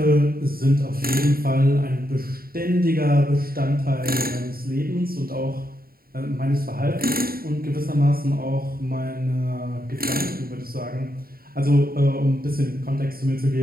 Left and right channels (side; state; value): left; late; 0.43 ms